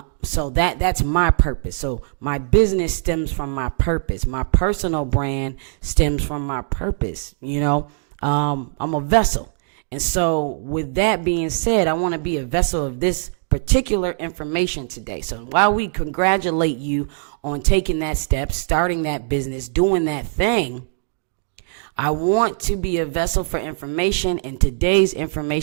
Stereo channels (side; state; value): left; silent; digital silence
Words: So that's my purpose. So my business stems from my purpose. My personal brand stems from my purpose. I'm a vessel. And so with that being said, I want to be a vessel of this particular information today. So while we congratulate you on taking that step, starting that business, doing that thing, I want to be a vessel for information, and today's